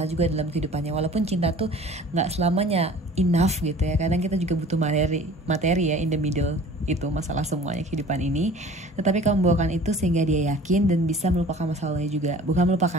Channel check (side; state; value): both; normal; correlation 0.46